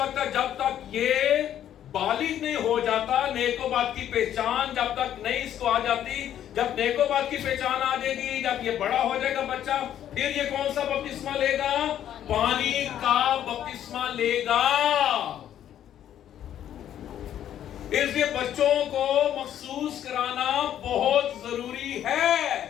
तक, जब तक ये बालिग नहीं हो जाता, नेकोबात की पहचान जब तक नहीं इसको आ जाती, जब नेकोबात की पहचान आ जाएगी, जब ये बड़ा हो जाएगा बच्चा, फिर ये कौन सा बपतिस्मा लेगा? पानी का बपतिस्मा लेगा। इसलिए बच्चों को महसूस कराना बहुत जरूरी है।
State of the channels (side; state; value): right; quieter; 10.7 dB